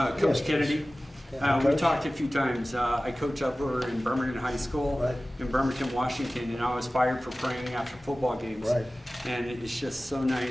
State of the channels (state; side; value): normal; both; correlation 0.97